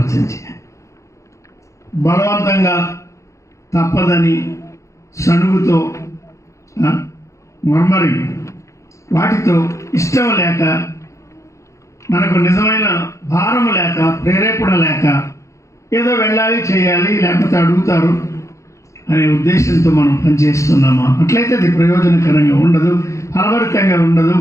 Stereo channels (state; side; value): late; right; 0.15 ms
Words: బలవంతంగా తప్పదని సణుగుతో, మర్మరి వాటితో, ఇష్టం లేక, మనకు నిజమైన భారము లేక, ప్రేరేపణ లేక, ఏదో వెళ్ళాలి, చేయాలి, లేకపోతే అడుగుతారు అనే ఉద్దేశంతో మనం పనిచేస్తున్నామా? అట్లయితే అది ప్రయోజనకరంగా ఉండదు, ఫలభరితంగా ఉండదు,